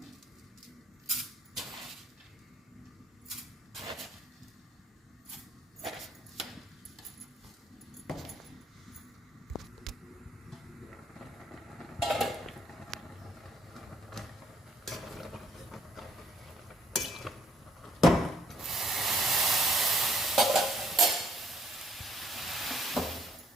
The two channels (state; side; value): normal; both; correlation 0.65